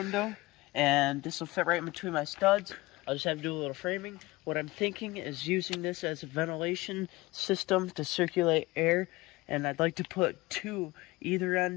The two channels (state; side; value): quieter; right; 21.1 dB